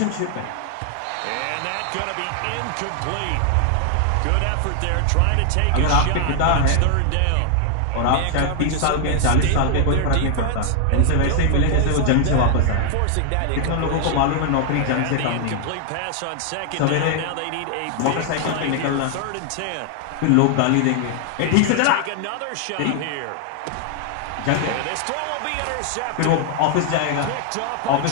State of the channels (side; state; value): both; different; correlation 0.00